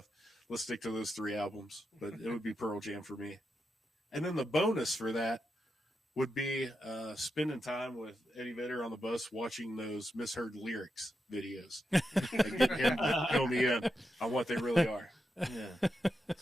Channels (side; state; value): both; normal; correlation 0.87